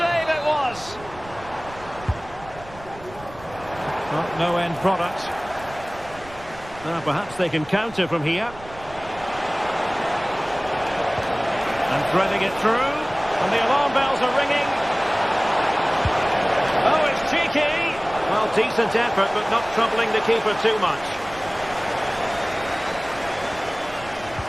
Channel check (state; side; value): noise; right; rumble, 18 dB below the sound